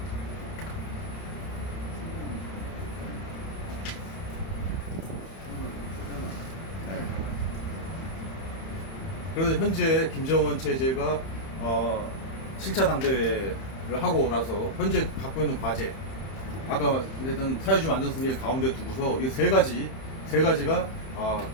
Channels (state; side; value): late; right; 31 ms